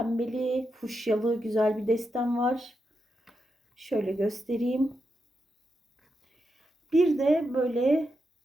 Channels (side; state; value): both; normal; correlation 0.86